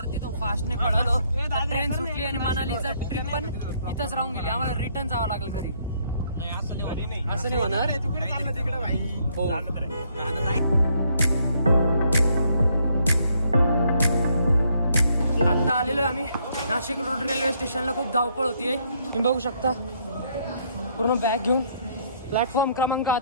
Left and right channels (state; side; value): inverted; both; correlation -0.70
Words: तिथं फास्ट नाही पडालो तर ट्रेन सुटली आणि मनालीचा ट्रिप पण इथंच राहून गेली, आम्हाला रिटर्न जावं लागलं घरी। असं नाही होणार हो। आता आलेलो आम्ही नाशिक रोड रेल्वे स्टेशनला, खूप धावपळ होतीये, तुम्ही बघू शकता। पूर्ण बॅग घेऊन प्लॅटफॉर्म क्रमांक